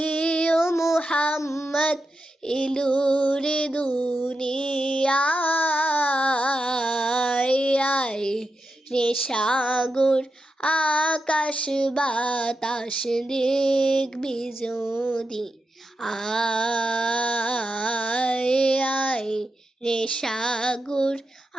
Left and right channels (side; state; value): both; normal; correlation 0.88